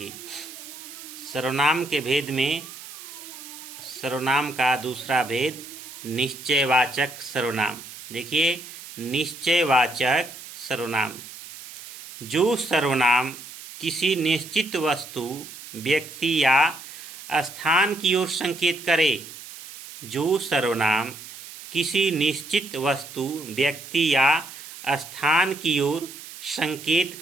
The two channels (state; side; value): noise; right; hiss, 14 dB below the sound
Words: सर्वनाम के भेद में सर्वनाम का दूसरा भेद निश्चयवाचक सर्वनाम। देखिए, निश्चयवाचक सर्वनाम जो सर्वनाम किसी निश्चित वस्तु, व्यक्ति या स्थान की ओर संकेत करे। जो सर्वनाम किसी निश्चित वस्तु, व्यक्ति या स्थान की ओर संकेत